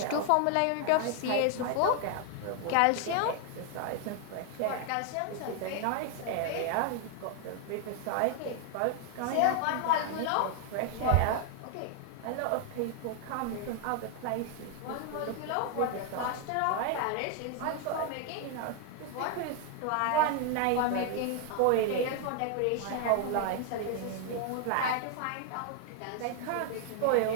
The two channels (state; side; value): different; both; correlation 0.00